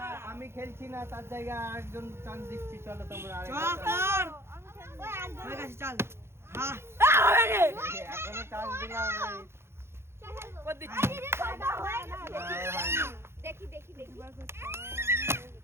আমি খেলছি না, তার জায়গায় আরেকজন চান্স দিচ্ছি, চলো তোমরা চ আরেকজন। কর ওই একজন হয়ে গেছে চল হ্যাঁ হবে রে এখনো চান্স দিলাম নাই। কর দিচ্ছি আরে রে দাদা হয়ে গেছে হয়নি। দেখি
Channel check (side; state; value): left; late; 0.12 ms